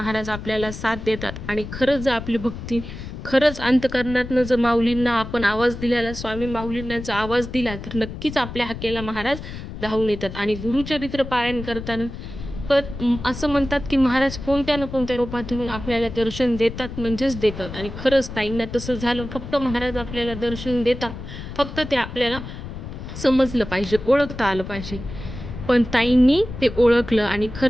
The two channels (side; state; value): left; noise; rumble, 10 dB below the sound